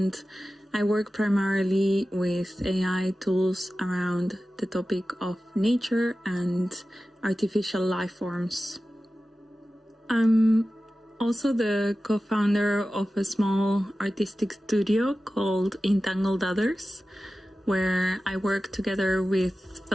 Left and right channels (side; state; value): both; normal; correlation 0.95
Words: I work primarily with AI tools around the topic of nature and artificial life forms. I'm also the co-founder of a small artistic studio called Entangled Others, where I work together with